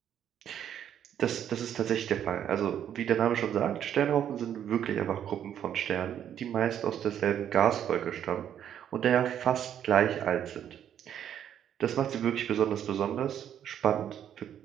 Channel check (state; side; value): quieter; left; 9.7 dB